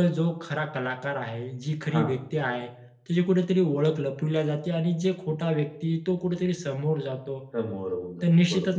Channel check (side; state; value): both; identical; correlation 1.00